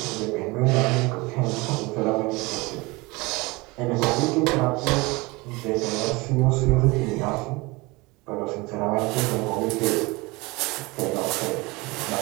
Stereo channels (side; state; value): left; quieter; 24.2 dB